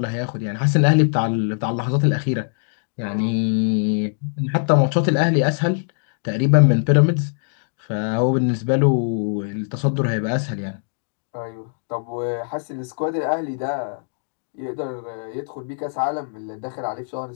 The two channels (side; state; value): right; silent; digital silence